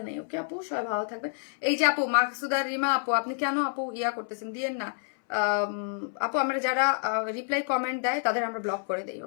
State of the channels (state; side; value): silent; right; 59 dB below the other